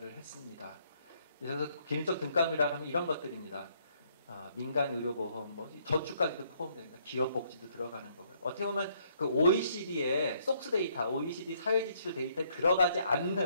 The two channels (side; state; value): both; inverted; correlation -0.69